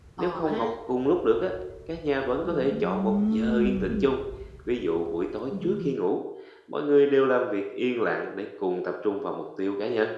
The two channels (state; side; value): identical; both; correlation 1.00